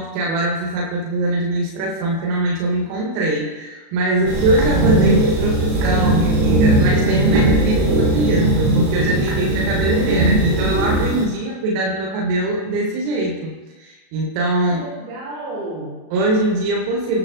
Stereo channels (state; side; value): late; left; 37 ms